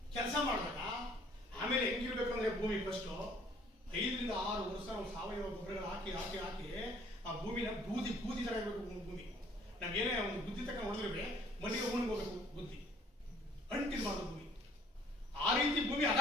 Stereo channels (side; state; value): both; normal; correlation 0.58